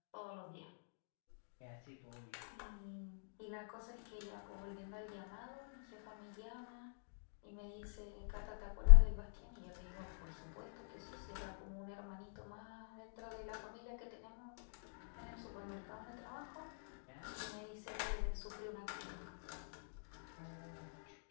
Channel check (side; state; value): right; silent; digital silence